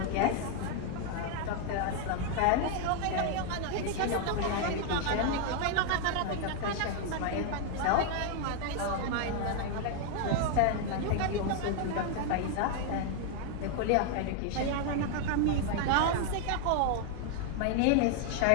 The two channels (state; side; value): different; both; correlation 0.00